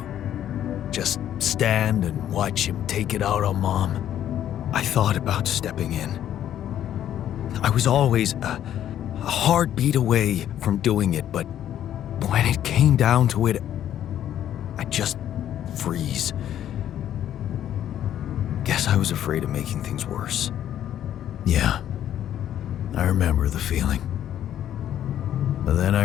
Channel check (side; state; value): right; quieter; 11.0 dB